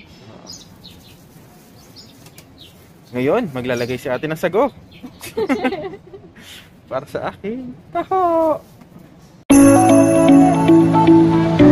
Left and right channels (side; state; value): both; identical; correlation 1.00